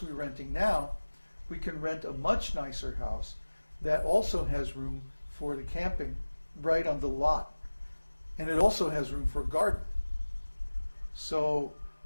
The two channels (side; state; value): both; inverted; correlation -1.00